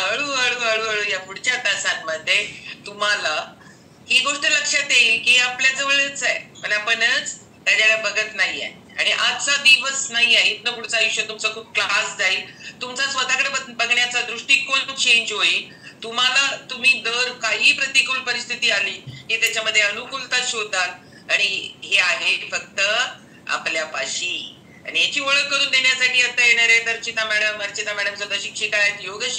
हळूहळू या पुढच्या तासांमध्ये तुम्हाला ही गोष्ट लक्षात येईल की आपल्या जवळच आहे, पण आपणच त्याच्याकडे बघत नाहीये. आणि आजचा दिवस नाहीये, इथनं पुढचं आयुष्य तुमचं खूप क्लास जाईल, तुमचा स्वतःकडे बघण्याचा दृष्टिकोन चेंज होईल. तुम्ही दर काही प्रतिकूल परिस्थिती आली की त्याच्यामध्ये अनुकूलता शोधाल, आणि हे आहे फक्त आपल्यापाशी. आणि याची ओळख करून देण्यासाठी आता येणार आहेत अर्चिता मॅडम सुद्धा शिक्षिका आहेत, योग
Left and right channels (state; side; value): identical; both; correlation 1.00